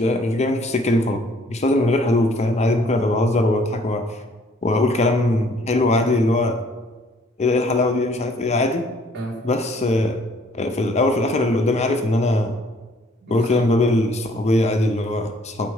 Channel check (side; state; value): both; normal; correlation 0.60